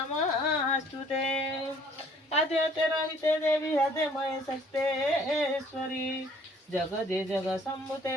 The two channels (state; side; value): normal; both; correlation 0.58